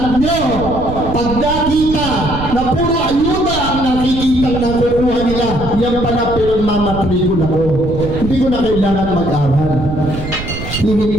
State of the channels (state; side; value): noise; right; rumble, 8 dB below the sound